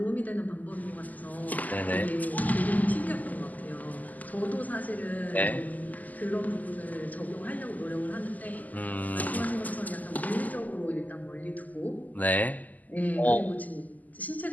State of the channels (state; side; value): late; right; 0.080 ms